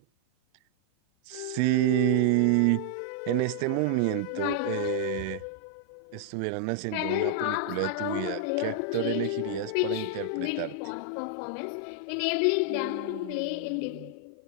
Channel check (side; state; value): both; different; correlation -0.01